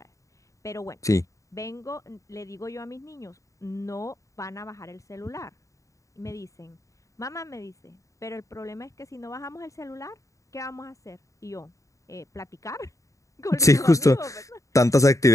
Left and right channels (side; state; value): right; late; 0.16 ms